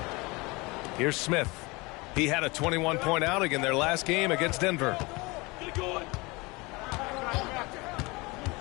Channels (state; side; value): quieter; right; 24.9 dB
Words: Here's Smith. He had a 21-point outing in their last game against Denver.